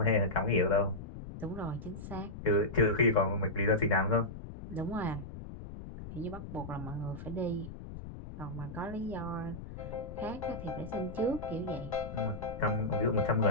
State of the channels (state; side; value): noise; left; rumble, 11 dB below the sound